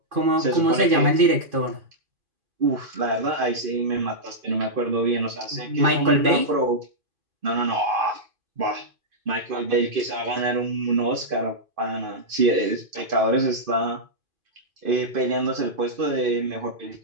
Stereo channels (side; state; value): left; late; 2.5 ms